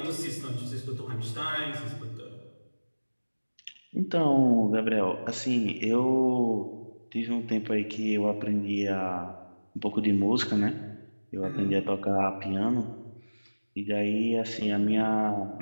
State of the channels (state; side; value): inverted; both; correlation -1.00